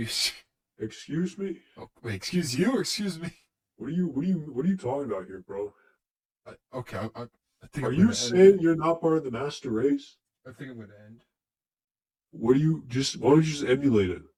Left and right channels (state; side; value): identical; both; correlation 1.00